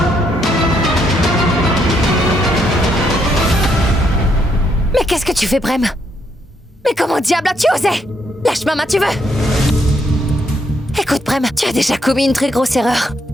Mais qu'est-ce que tu fais, Prem? Mais comment diable as-tu osé? Lâche ma main, tu veux. Écoute, Prem, tu as déjà commis une très grosse erreur.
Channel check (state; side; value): normal; both; correlation 0.75